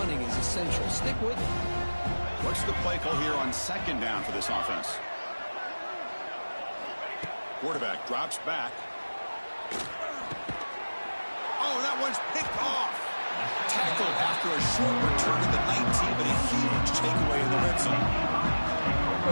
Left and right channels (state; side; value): inverted; both; correlation -1.00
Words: is essential. Stick with it. What's the play call here on 2nd down for this offense? Quarterback drops back. Oh, that one's picked off. Tackled after a short return to the 19, but a huge takeaway in the red zone.